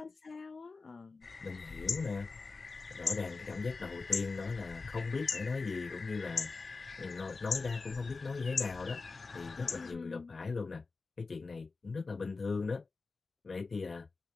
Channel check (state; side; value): quieter; right; 4.1 dB